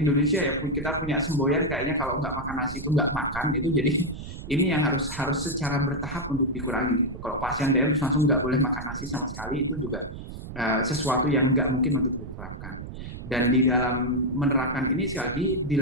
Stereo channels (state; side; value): noise; right; rumble, 10 dB below the sound